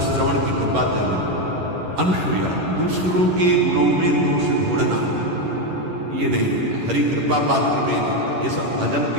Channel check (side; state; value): left; late; 11 ms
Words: श्रवण की कृपा जरूर। अनुसूया, दूसरों के गुणों में दोष ढूंढना, ये नहीं, हरि कृपा पात्र में नहीं। ये सब भजन